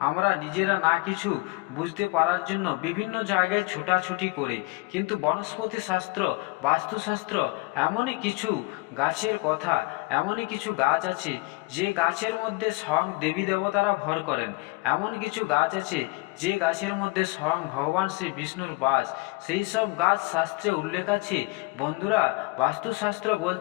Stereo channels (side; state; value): right; quieter; 24.4 dB